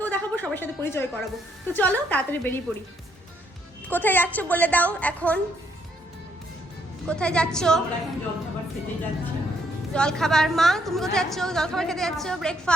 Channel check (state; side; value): normal; both; correlation 0.72